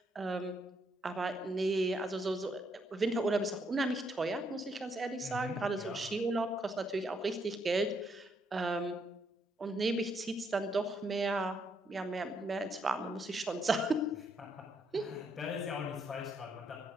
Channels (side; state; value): both; normal; correlation 0.74